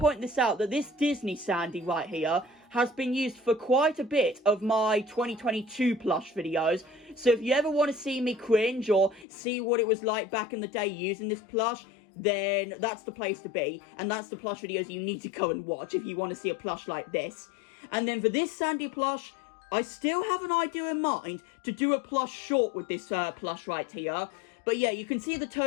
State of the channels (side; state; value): right; drops out; at 9.2 s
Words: this out that this Disney Sandy right here has been used for quite a bit of my 2022 plush videos. So if you ever want to see me cringe or see what it was like back in the day using this plush, then that's the place to be. And that's the plush videos you need to go and watch if you want to see a plush like this. And then for this Sandy plush, I still have an idea in mind to do a plush short with this plush right here. But yeah, you can see the